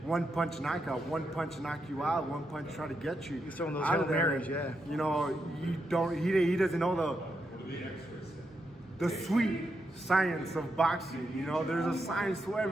one punch knockout, one punch knock you out, one punch try to get you. He's throwing those out Hail of there. Marys, yeah. You know, he doesn't know the sweet science of boxing. You know, there's a science to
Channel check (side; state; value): both; normal; correlation 0.83